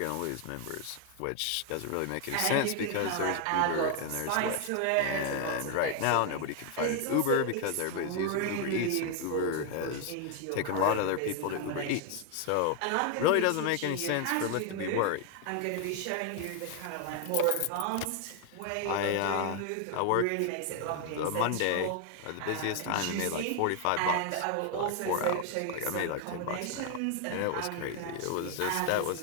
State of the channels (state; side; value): different; both; correlation 0.00